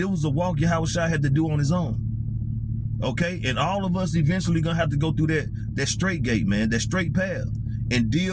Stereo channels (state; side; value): identical; both; correlation 1.00